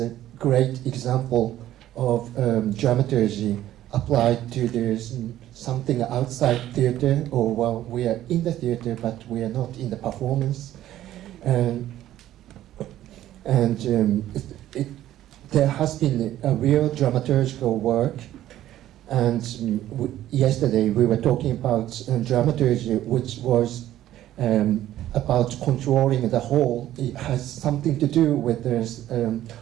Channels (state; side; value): quieter; left; 13.2 dB